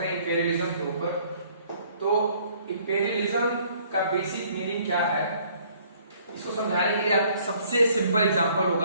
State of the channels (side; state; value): both; inverted; correlation -0.60